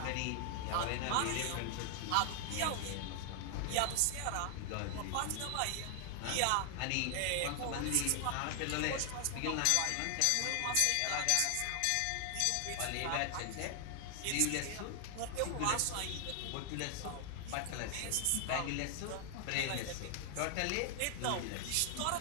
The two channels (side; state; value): both; different; correlation 0.00